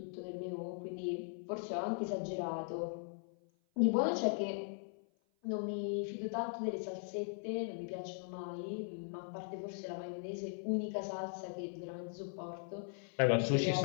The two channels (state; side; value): silent; right; 52 dB below the other